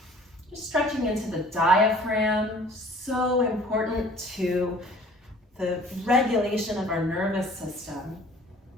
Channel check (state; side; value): normal; both; correlation 0.51